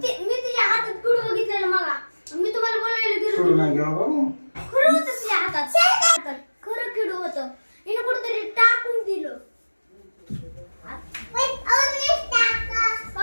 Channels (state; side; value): inverted; both; correlation -1.00